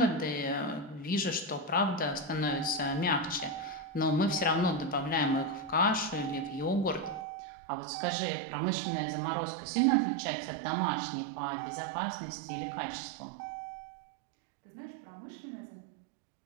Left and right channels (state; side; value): drops out; left; at 7.2 s